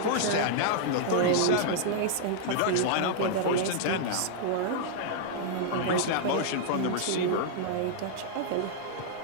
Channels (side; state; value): both; different; correlation -0.01